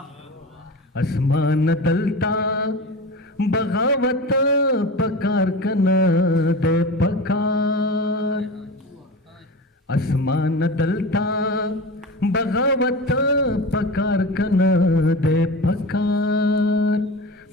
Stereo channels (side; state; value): both; normal; correlation 0.30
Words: اسمان دلتا بغاوت پکار کنا دے پکار اسمان دلتا بغاوت پکار کنا دے پکار